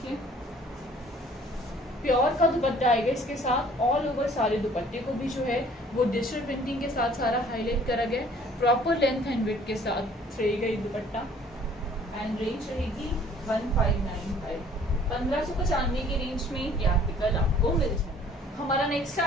प्योर का दुपट्टा आएगा इसके साथ। ऑल ओवर सारे दुपट्टे को भी जो है वो डिजिटल प्रिंटिंग के साथ सारा हाईलाइट करा गया। प्रॉपर लेंथ एंड विड्थ के साथ रहेगा ये दुपट्टा एंड रेंज रहेगी 1595। 1595 की रेंज में ये आर्टिकल आपको मिल जाएगा। हमारा नेक्स्ट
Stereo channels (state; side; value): normal; both; correlation 0.55